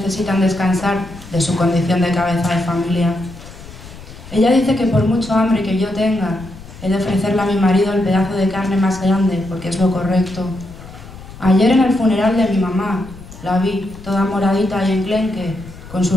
descansar de su condición de cabeza de familia. Ella dice que por mucho hambre que yo tenga, he de ofrecerle a mi marido el pedazo de carne más grande, porque es lo correcto. Ayer en el funeral de mi mamá, la vi toda moradita y enclenque, con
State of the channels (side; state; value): left; noise; rumble, 17 dB below the sound